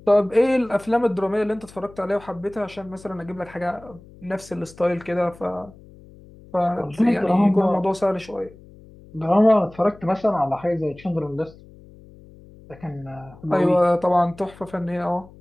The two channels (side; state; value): left; noise; hum, 22 dB below the sound